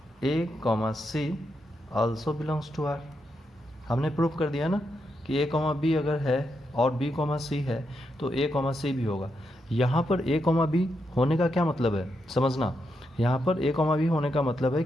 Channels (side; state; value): both; normal; correlation 0.83